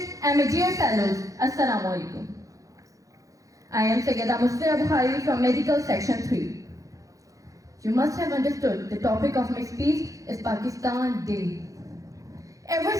and my dear fellows. Assalamu alaikum. I am Sayyida Musfira Bukhari from Medical Section 3. You must have understood the topic of my speech is Pakistan Day. Ever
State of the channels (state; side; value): late; left; 0.16 ms